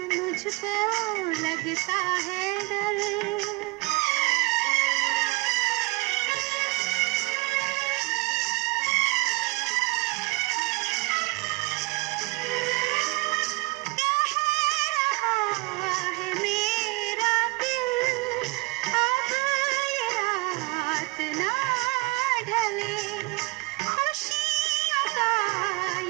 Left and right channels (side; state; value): left; quieter; 25.6 dB